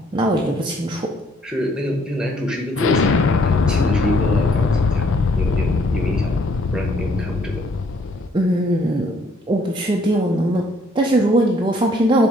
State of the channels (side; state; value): both; normal; correlation 0.65